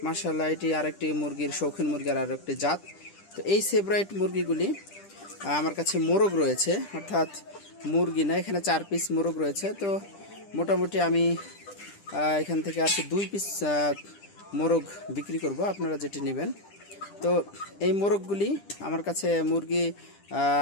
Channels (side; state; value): right; late; 10 ms